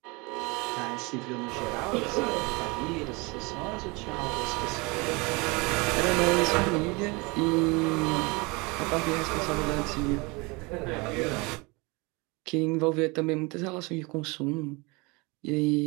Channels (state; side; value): quieter; left; 26.8 dB